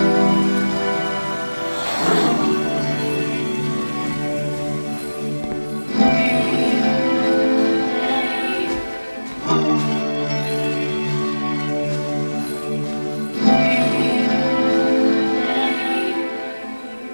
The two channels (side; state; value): both; inverted; correlation -1.00